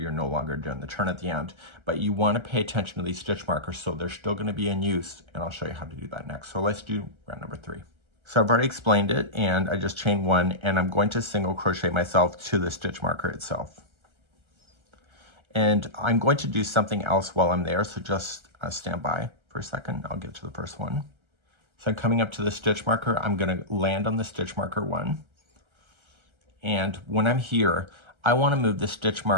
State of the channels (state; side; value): late; left; 1.3 ms